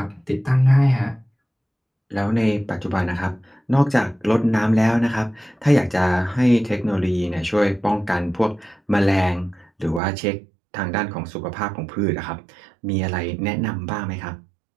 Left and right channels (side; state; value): left; drops out; at 10.0 s